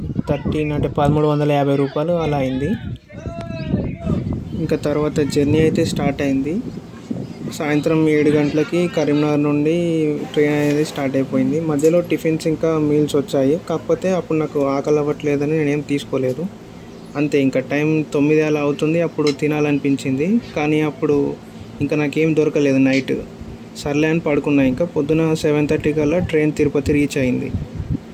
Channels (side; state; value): both; identical; correlation 1.00